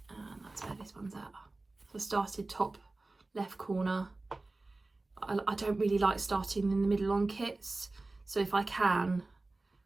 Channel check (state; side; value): quieter; left; 3.2 dB